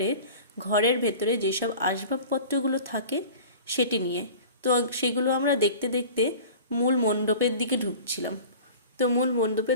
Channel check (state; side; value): inverted; both; correlation -0.40